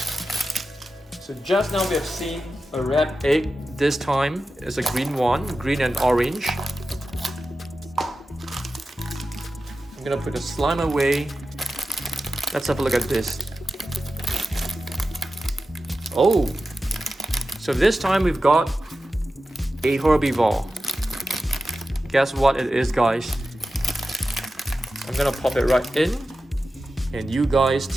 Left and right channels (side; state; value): both; normal; correlation 0.93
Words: So just now we have seen a red egg. This time it's a green one, green and orange. I'm gonna put the slime away. Let's have a look at this. Oh, so this time we've got a herbivore. Guess what it is, guys? I'm gonna pop it right in, and you guys